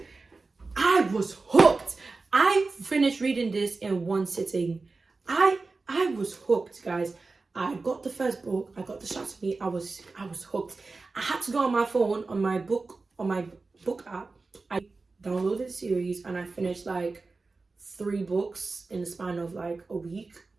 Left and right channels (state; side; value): quieter; left; 3.8 dB